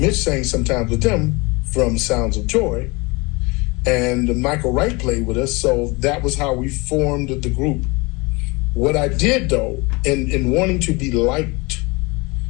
Mitch sang sometimes with them, from Sounds of Joy, and Michael Wright played with us, so that was how we formed the group. What I did, though, in wanting to be liked,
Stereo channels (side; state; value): right; quieter; 26.2 dB